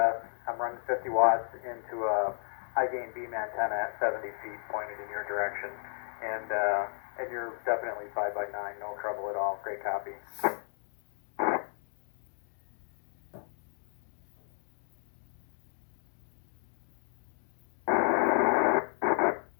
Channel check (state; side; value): silent; right; 56 dB below the other